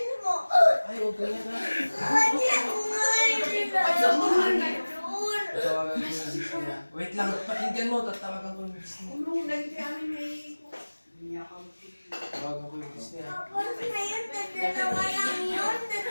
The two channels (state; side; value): inverted; both; correlation -1.00